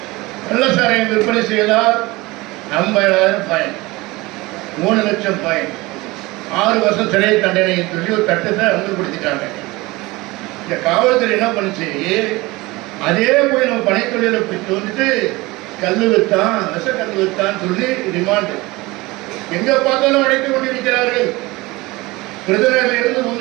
கள்ளசாரையை விற்பனை செய்தால் 50,000 ஃபைன், 3 லட்சம் ஃபைன், 6 வருஷம் சிறை தண்டனை சொல்லி ஒரு சட்டத்தை அமல்படுத்திட்டாங்க. இந்த காவல்துறை என்ன பண்ணுச்சு, அதே போய் நம்ம பனைத்தொழிலை வந்துட்டு கல் வித்தான், விஷ கல் வித்தான் சொல்லி ரிமாண்டு எங்க பார்த்தாலும் அழைத்துக் கொண்டிருக்கிறார்கள். விருதுநகரில் இருந்து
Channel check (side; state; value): left; quieter; 21.7 dB